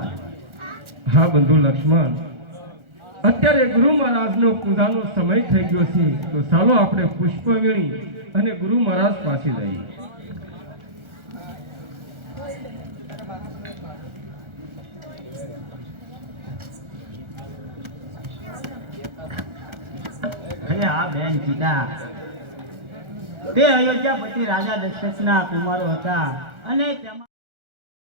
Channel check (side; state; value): left; late; 1.4 ms